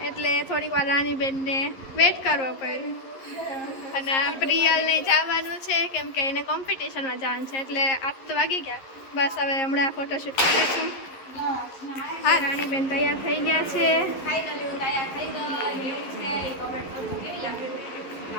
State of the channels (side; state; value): right; late; 11 ms